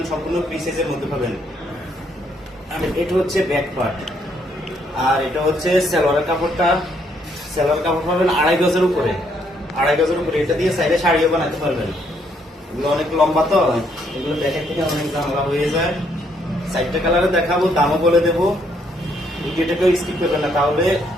সম্পূর্ণ ফ্রি সাইজের মধ্যে পাবেন। আর এটা হচ্ছে ব্যাক পার্ট, আর এটা হচ্ছে সালোয়ারের কাপড়টা। সালোয়ার কাপড় পাবেন 2.5 গজের উপরে, 2.5 গজের উপরে। এটা দিয়ে সাইডে শাড়িও বানাতে পারবেন। এগুলো অনেক লম্বা তো, এগুলো দেখের থেকে অনেক ঝামেলা হয়ে যায়। সাইডটা কালারে দেখাবো, দামও বলে দেবো। ভিডিওটাকেও স্কিপ করবেন না, তাহলে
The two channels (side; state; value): both; normal; correlation 0.71